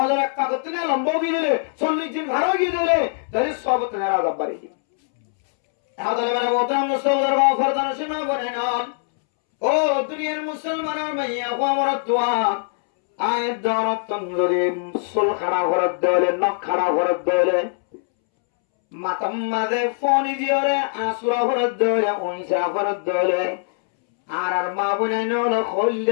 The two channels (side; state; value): right; silent; 64 dB below the other